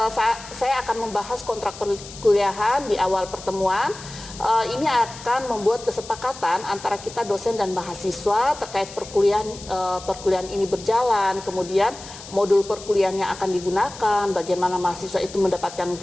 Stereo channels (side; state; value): left; noise; hiss, 15 dB below the sound